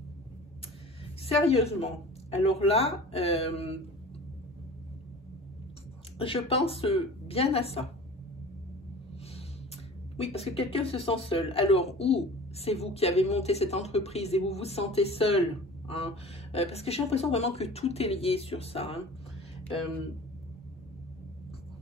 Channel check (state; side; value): normal; both; correlation 0.40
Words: Sérieusement. Alors là, je pense bien à ça. Oui, parce que quelqu'un se sent seul. Alors, ou c'est vous qui avez monté cette entreprise et vous vous sentez seul. Hein, parce que j'ai l'impression vraiment que tout est lié sur ça. Hein.